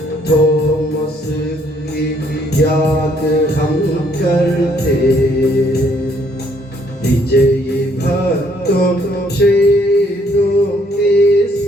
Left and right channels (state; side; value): normal; both; correlation 0.66